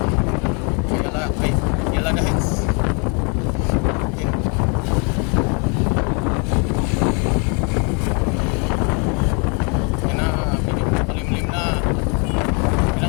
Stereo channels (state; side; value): quieter; right; 35.4 dB